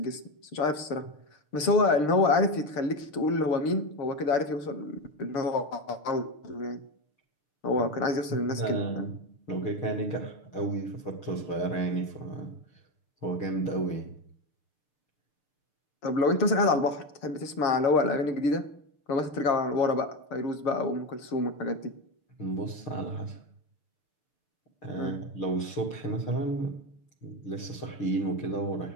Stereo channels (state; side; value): late; right; 6.7 ms